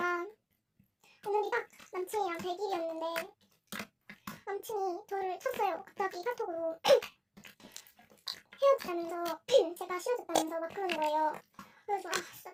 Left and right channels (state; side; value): identical; both; correlation 1.00